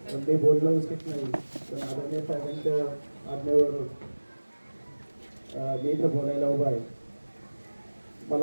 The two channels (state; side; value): inverted; both; correlation -1.00